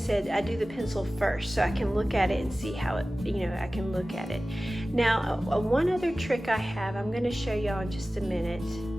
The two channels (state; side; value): normal; both; correlation 0.96